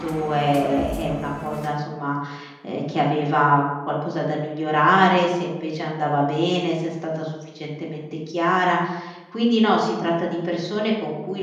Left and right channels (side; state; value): both; identical; correlation 1.00